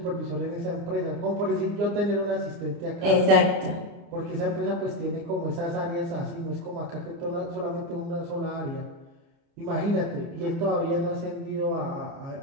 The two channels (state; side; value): late; left; 29 ms